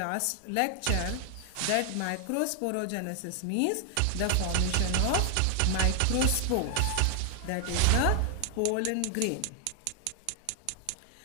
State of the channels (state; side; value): different; both; correlation 0.00